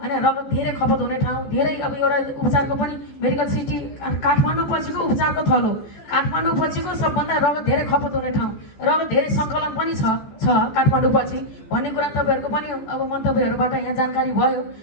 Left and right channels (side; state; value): right; late; 14 ms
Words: रगत धेरै खपत हुने ठाउँ, धेरै अब एउटा उपचारको पनि मेडिकल सिटी काठमाडौँ पछिको उपचारको थलो हो। काठमाडौँ पछिको सबभन्दा रगत धेरै खपत हुने ठाउँ, रगत धेरै सङ्कलन पनि छ काठमाडौँ पछि भन्ने कुरा तपाईँहरूको पनि अब मन्तव्यहरूबाट यहाँ जानकारी भयो।